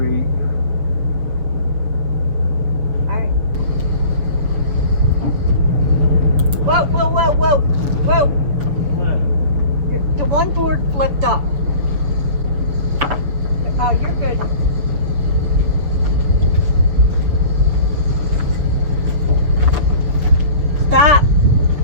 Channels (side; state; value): left; late; 7.0 ms